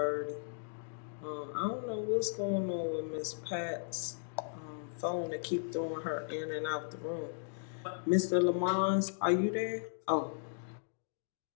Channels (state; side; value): silent; right; digital silence